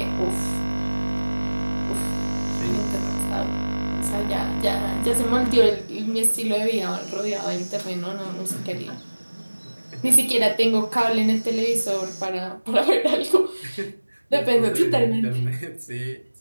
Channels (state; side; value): inverted; both; correlation -1.00